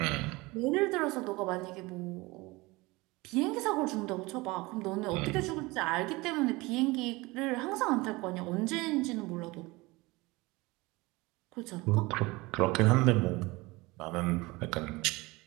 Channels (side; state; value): left; quieter; 22.6 dB